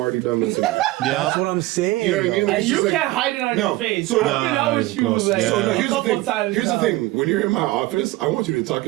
done listening. That's what I'm saying. You know what I mean? Like, And it's you just like- can't hide it on No. your face. So- I've been out with you close. like Yeah. So no, a here's the couple thing. times. Here's the now. thing. When you're in my office, I want you to talk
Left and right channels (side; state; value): left; quieter; 18.4 dB